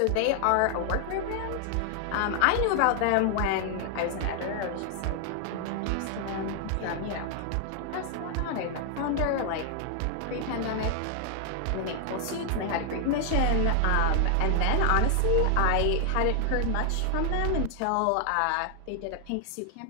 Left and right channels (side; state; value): both; different; correlation 0.00